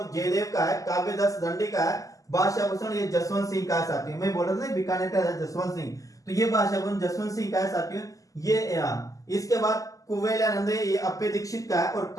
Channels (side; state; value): right; late; 0.17 ms